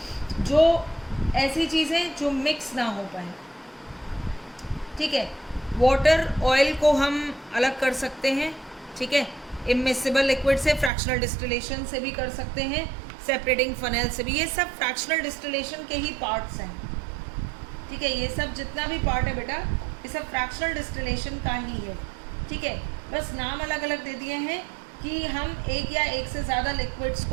जो ऐसी चीज़ें जो मिक्स ना हो पाए। ठीक है, वाटर ऑयल को हम अलग कर सकते हैं। ठीक है, इममिसिबल लिक्विड से, फ्रैक्शनल डिस्टिलेशन से भी कर सकते हैं, सेपरेटिंग फनेल से भी। ये सब फ्रैक्शनल डिस्टिलेशन के ही पार्ट्स हैं। ठीक है, ये सब जितना भी पार्ट है बेटा, ये सब फ्रैक्शनल डिस्टिलेशन का ही है। ठीक है, बस नाम अलग अलग दे दिए हैं कि हम एक या एक से ज़्यादा लिक्विड्स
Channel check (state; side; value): drops out; left; at 10.9 s